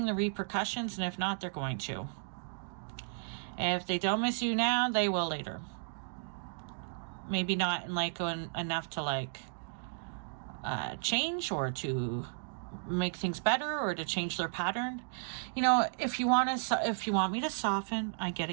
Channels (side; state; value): left; silent; digital silence